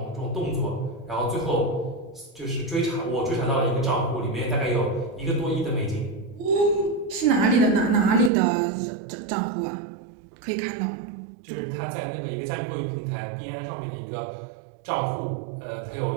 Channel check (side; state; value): left; drops out; at 8.3 s